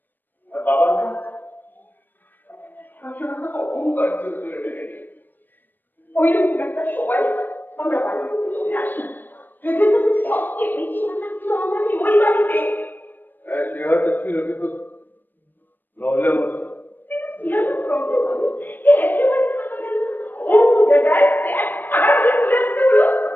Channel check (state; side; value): late; right; 0.092 ms